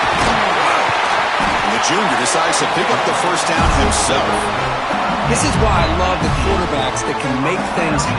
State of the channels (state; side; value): identical; both; correlation 1.00